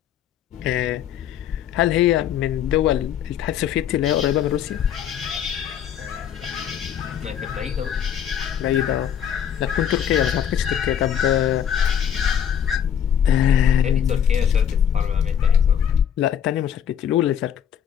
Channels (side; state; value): right; quieter; 9.1 dB